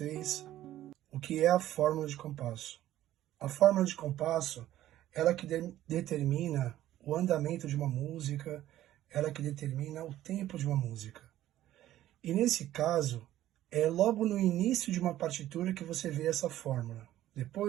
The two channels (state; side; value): quieter; left; 13.6 dB